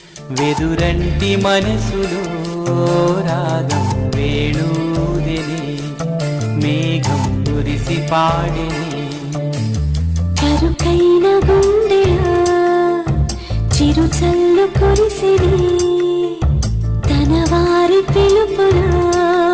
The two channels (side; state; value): both; identical; correlation 1.00